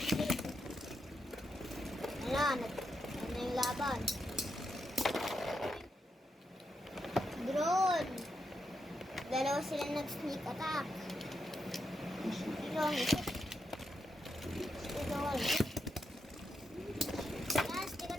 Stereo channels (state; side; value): normal; both; correlation 0.84